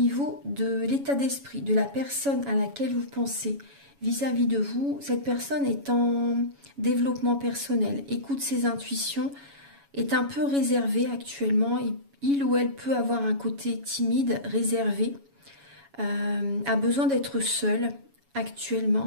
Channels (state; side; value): late; left; 7.1 ms